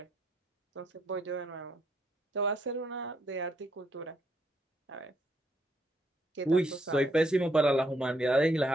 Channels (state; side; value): normal; both; correlation 0.74